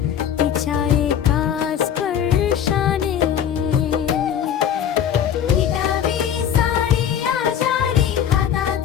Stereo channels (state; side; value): quieter; right; 9.2 dB